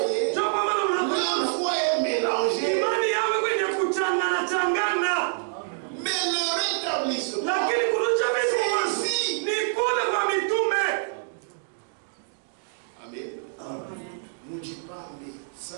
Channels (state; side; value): silent; left; digital silence